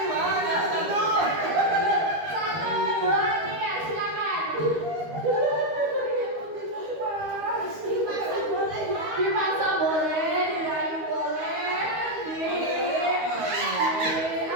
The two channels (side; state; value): left; late; 13 ms